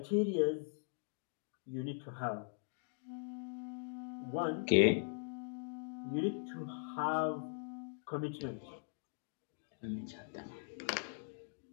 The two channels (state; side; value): silent; right; digital silence